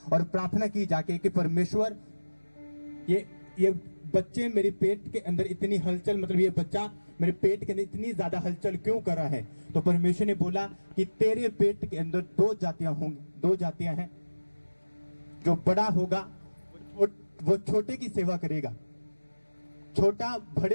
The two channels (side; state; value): both; inverted; correlation -1.00